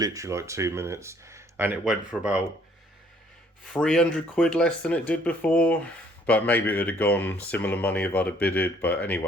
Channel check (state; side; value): normal; both; correlation 0.62